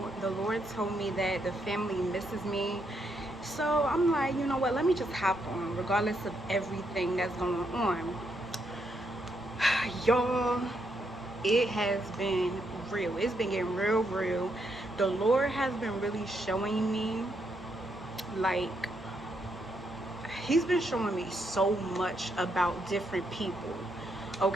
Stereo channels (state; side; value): normal; both; correlation 0.78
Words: the Lord told me that the family misses me. So I'm like, you know what, let me just hop on regardless of everything that's going on. Y'all, it has been real. It's been getting real. The Lord has been really showing me, like, He's been showing me so much about different people,